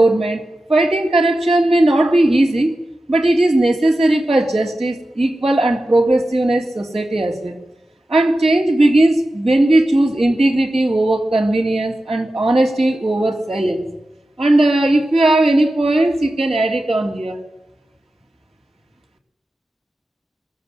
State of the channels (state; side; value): normal; both; correlation 0.93